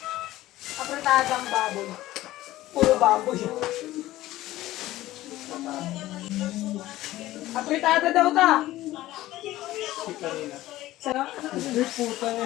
Apretadang baboy. Puro baboy. Apretada daw ta. Sa'yo? Ay, puta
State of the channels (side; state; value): right; quieter; 15.9 dB